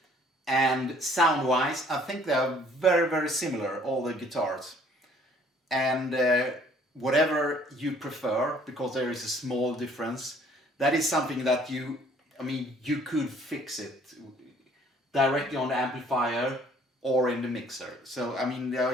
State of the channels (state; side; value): normal; both; correlation 0.58